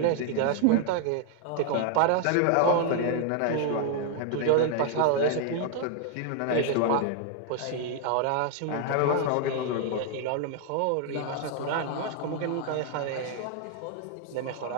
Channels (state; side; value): different; both; correlation 0.00